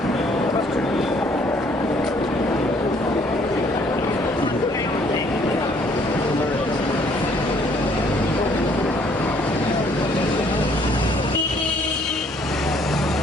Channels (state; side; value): normal; both; correlation 0.63